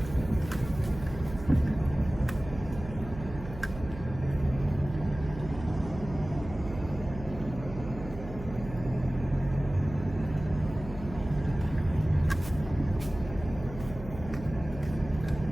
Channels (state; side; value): noise; right; hum, 12 dB below the sound